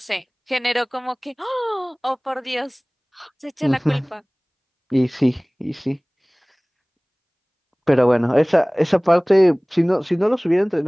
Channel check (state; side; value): identical; both; correlation 1.00